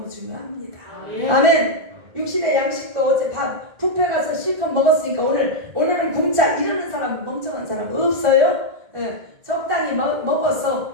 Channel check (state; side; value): late; left; 1.5 ms